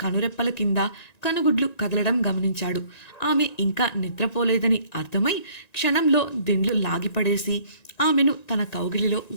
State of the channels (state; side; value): late; right; 1.9 ms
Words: కనురెప్పల కింద కనుగుడ్లు కదలడం గమనించాడు. ఆమె ఇంకా నిద్రపోలేదని అర్థమై క్షణంలో దిండ్లు లాగిపడేసి ఆమెను తన కౌగిలిలో